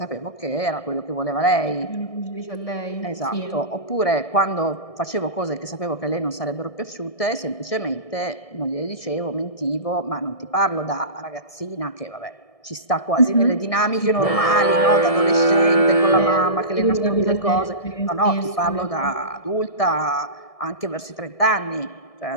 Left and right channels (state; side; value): late; right; 1.7 ms